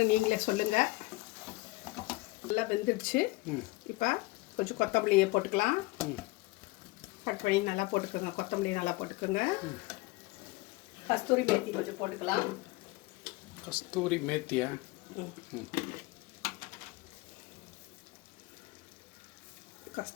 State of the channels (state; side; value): quieter; right; 22.3 dB